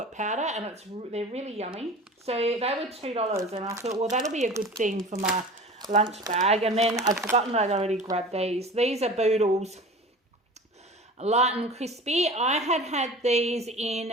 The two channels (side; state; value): both; normal; correlation 0.38